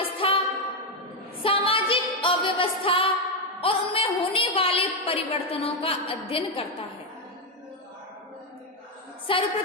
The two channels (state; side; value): normal; both; correlation 0.05